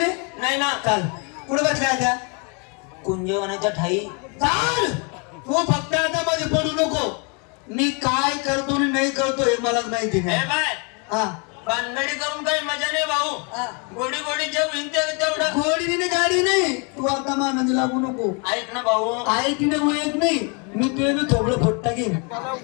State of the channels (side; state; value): right; quieter; 34.2 dB